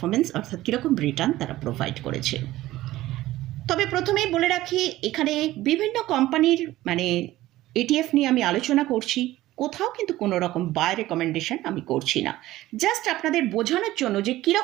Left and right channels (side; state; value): left; quieter; 16.1 dB